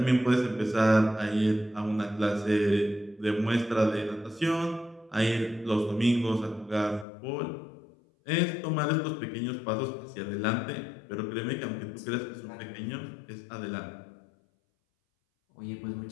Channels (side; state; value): right; drops out; at 7.1 s